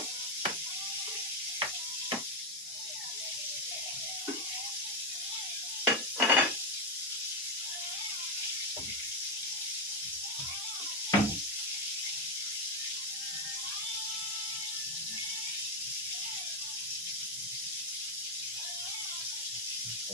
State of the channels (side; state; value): both; normal; correlation 0.05